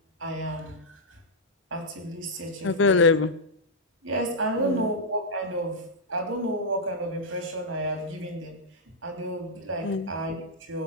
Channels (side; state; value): both; normal; correlation -0.08